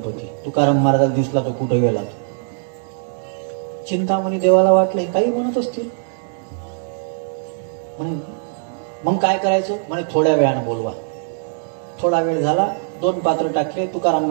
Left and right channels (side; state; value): left; silent; digital silence